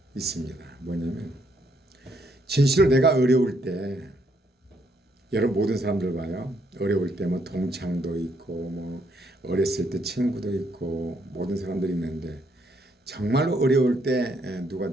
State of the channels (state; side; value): normal; both; correlation 0.72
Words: 있습니다. 뭐냐면 진실로 내가 어려울 때 여러분 모든 사람들 봐요. 어려울 때 뭐 동창도 있고 뭐 어렸을 때 친구도 있고 모든 사람들이 있는데 정말로 어려울 때 누가